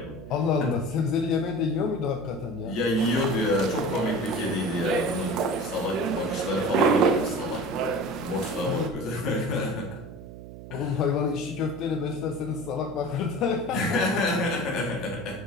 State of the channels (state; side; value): noise; right; hum, 14 dB below the sound